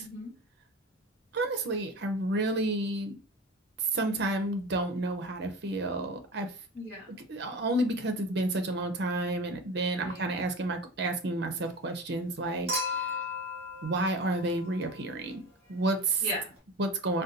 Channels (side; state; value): both; normal; correlation 0.32